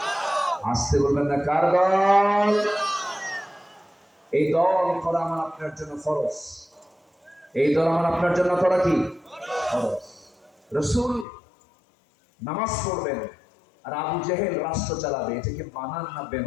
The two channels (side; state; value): right; drops out; at 11.2 s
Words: আসতে বলবেন না, কার দল? এই দল করা আমার আপনার জন্য ফরজ। এই দল আমার আপনার জন্য করা কি ফরজ? রাসূল নামাজ পড়বেন আর আবু জেহেল রাষ্ট্র চালাবে, এটাকে মানান না